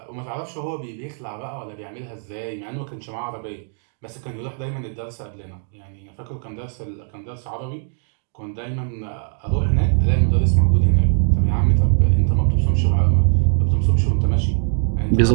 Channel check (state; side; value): silent; left; 55 dB below the other